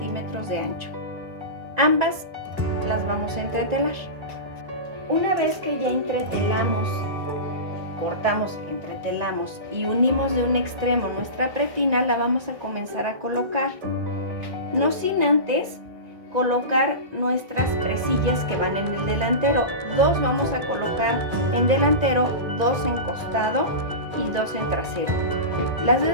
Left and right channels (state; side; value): late; left; 2.0 ms